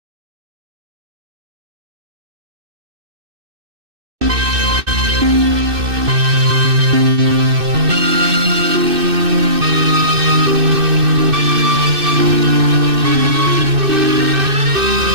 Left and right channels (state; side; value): late; left; 2.6 ms